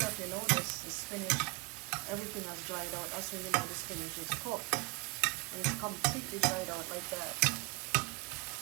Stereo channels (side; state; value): left; quieter; 28.6 dB